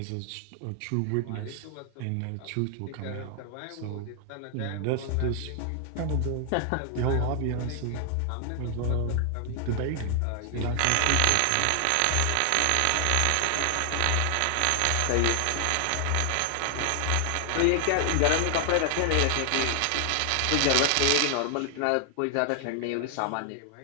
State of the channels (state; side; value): different; both; correlation 0.00